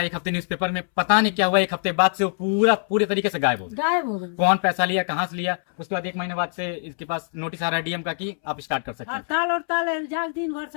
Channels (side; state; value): right; silent; 63 dB below the other